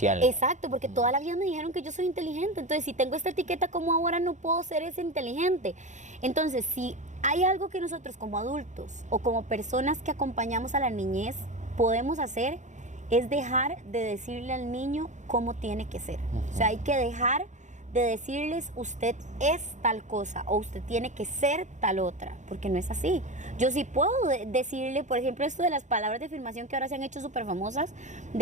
Exacto, porque toda la vida me dijeron que yo soy inteligente. Entonces, si tengo esta etiqueta, ¿cómo ahora no puedo ser ese inteligente? Entonces, si hay algo que nosotros como adultos o como personas que acompañamos a la niñez podemos hacer, es dejar de decirle al niño cómo tiene que ser. O sea, hay que dejar de decirles usted es tal cosa o usted tiene que ser tal otra, porque no es así. Yo sí puedo decirle, por ejemplo, esto de las palabras de afirmación que ahora se han hecho súper famosas,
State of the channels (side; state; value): left; late; 0.35 ms